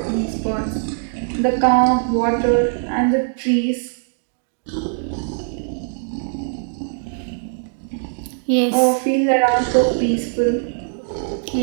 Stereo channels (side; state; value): left; silent; digital silence